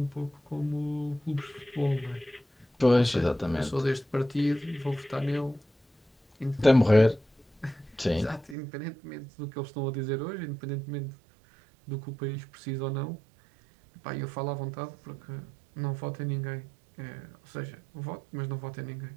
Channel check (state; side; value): drops out; left; at 8.6 s